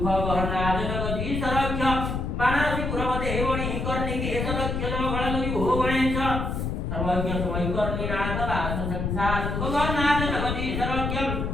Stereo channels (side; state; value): left; noise; rumble, 2 dB below the sound